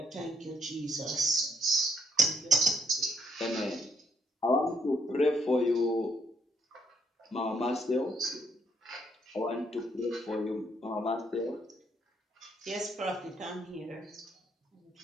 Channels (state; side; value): normal; both; correlation 0.72